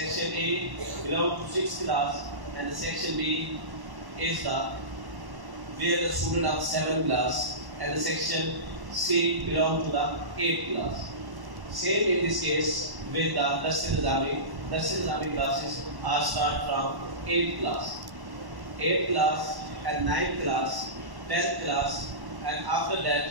A belongs to 6th class, and the Section B is where the student of 7th class, and the Section C belongs to the 8th class. Same in this case with the Dars Nizami. Dars Nizami classes are start from 8th class. 8th class and 9th class, 10th class, and after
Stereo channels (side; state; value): left; late; 1.1 ms